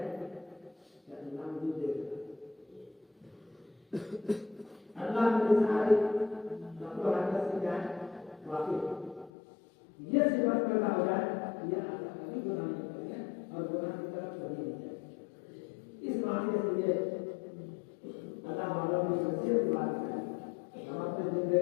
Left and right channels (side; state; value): right; drops out; at 9.3 s